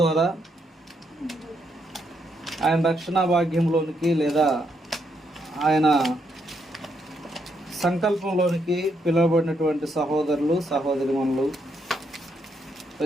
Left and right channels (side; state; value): both; normal; correlation 0.77